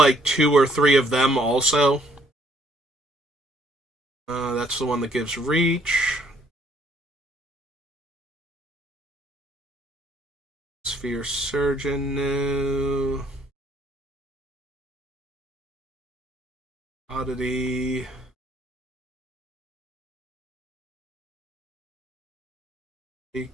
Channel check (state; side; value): normal; both; correlation 0.65